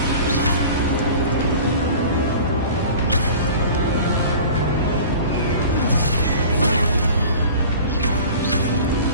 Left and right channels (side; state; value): both; inverted; correlation -0.40